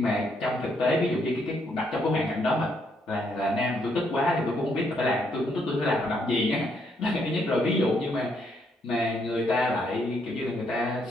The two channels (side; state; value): both; normal; correlation 0.74